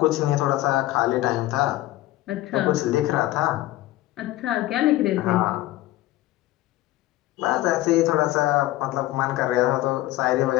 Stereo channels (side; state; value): right; quieter; 16.4 dB